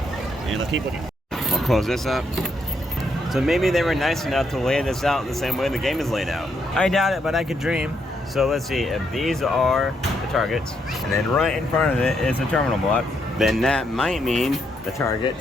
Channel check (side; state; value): both; normal; correlation 0.77